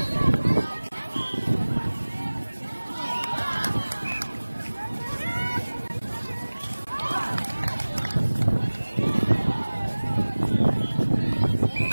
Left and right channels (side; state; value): both; inverted; correlation -1.00